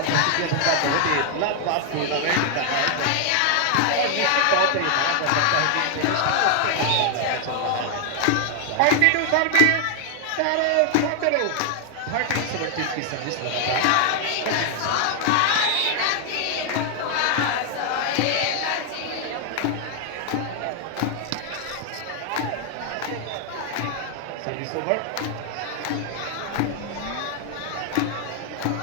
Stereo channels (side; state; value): both; different; correlation 0.00